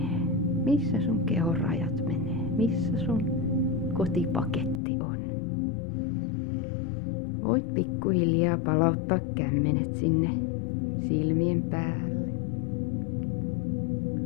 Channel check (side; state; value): right; drops out; at 4.8 s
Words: Missä sun kehon rajat menee. Missä sun kotipaketti on. Voit pikkuhiljaa palauttaa kämmenet sinne silmien päälle.